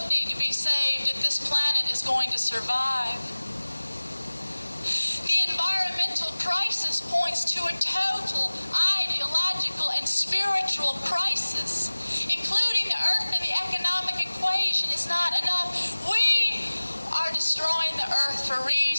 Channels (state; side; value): inverted; both; correlation -1.00